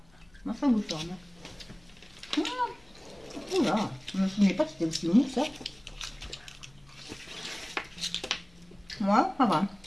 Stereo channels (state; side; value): noise; left; hum, 30 dB below the sound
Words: moi, ça bouge fort. Oula, je me souvenais pas que c'était aussi mou, ça. Moi, ça va.